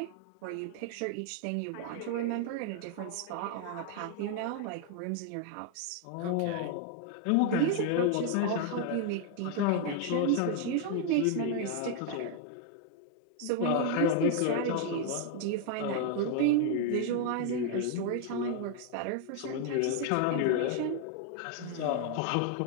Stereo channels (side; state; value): both; different; correlation 0.00